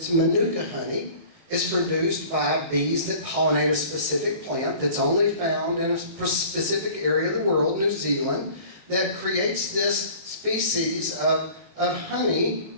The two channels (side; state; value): left; late; 18 ms